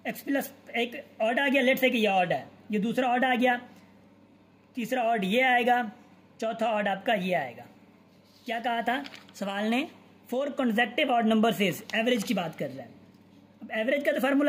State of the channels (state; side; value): identical; both; correlation 1.00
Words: x प्लस एक ऑड आ गया, लेट्स से कि ये ऑड है, ये दूसरा ऑड आ गया, तीसरा ऑड ये आएगा, चौथा ऑड आपका ये आएगा। क्या कहा था सवाल ने, 4 consecutive ऑड नंबर से एवरेज की बात कर रहा है। अब एवरेज का तो